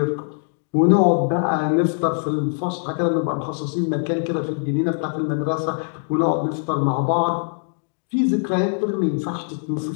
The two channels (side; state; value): right; silent; 64 dB below the other